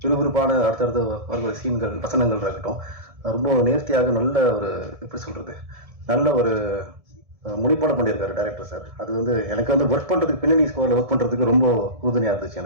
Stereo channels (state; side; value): late; left; 1.7 ms